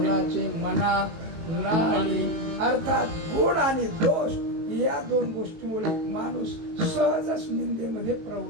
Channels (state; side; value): late; left; 19 ms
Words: मना नाही. अर्थात गुण आणि दोष या 2 गोष्टीमुळे माणूस सहजच निंदेमध्ये